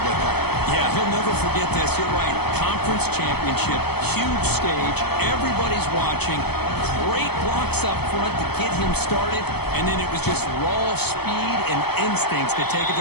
that. Yeah, he'll never forget this. You're right. Conference championship, huge stage. Everybody's watching. Great blocks up front to get him started, and then it was just raw speed and instincts to take it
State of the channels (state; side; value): late; right; 0.97 ms